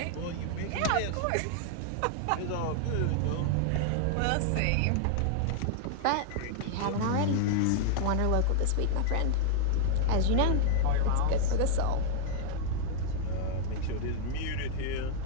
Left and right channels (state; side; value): different; both; correlation 0.00